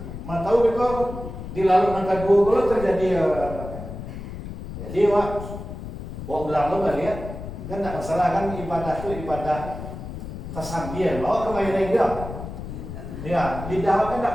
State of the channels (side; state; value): left; noise; rumble, 9 dB below the sound